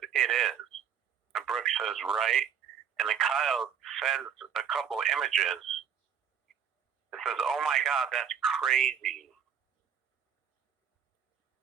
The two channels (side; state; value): left; quieter; 8.0 dB